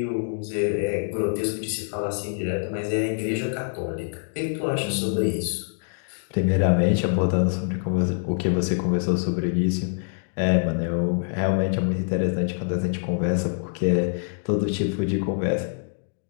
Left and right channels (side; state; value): right; silent; digital silence